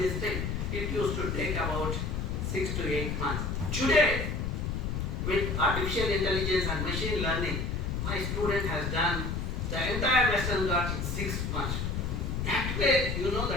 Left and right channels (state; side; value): noise; left; rumble, 1 dB below the sound